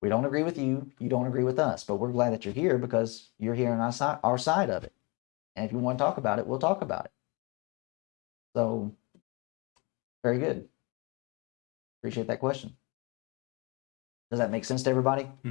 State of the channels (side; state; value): right; quieter; 28.6 dB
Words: We don't agree with you. You don't agree with us. But we're glad that you're here because you're here on our side of it. And if you want to talk about it, we'll talk about it. So, very good. Appreciate that question. Does that make sense to everybody?